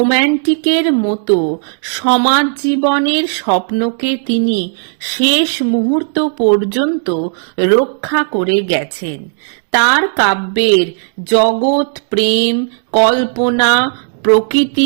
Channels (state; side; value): silent; left; 71 dB below the other